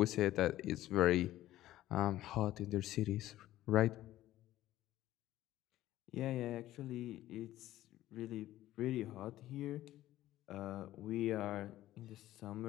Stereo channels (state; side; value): quieter; right; 14.6 dB